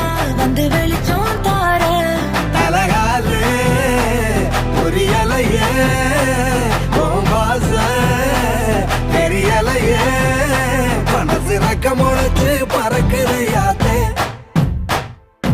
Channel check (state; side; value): identical; both; correlation 1.00